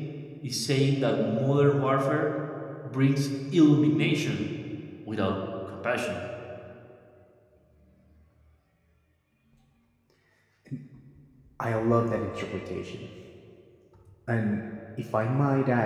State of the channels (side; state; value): both; identical; correlation 1.00